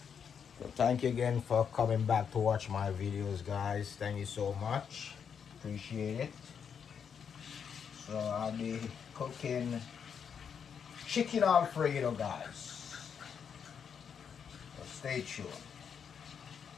so thank you again for coming back to watch my videos, guys. Thank you so much, appreciate it. So I'll be cooking chicken Alfredo, guys, so stay tuned.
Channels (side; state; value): right; quieter; 7.2 dB